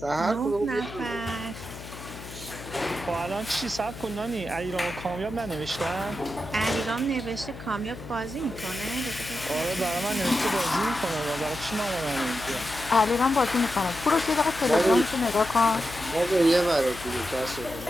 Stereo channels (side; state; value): left; noise; hum, 13 dB below the sound